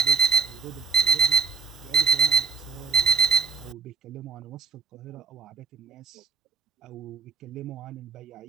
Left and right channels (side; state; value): left; quieter; 5.2 dB